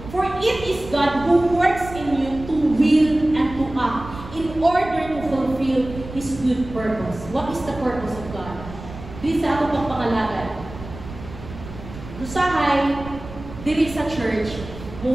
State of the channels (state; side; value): noise; right; rumble, 13 dB below the sound